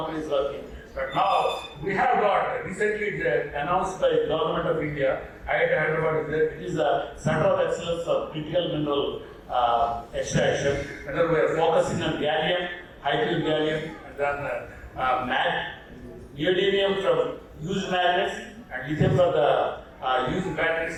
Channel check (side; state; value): both; identical; correlation 1.00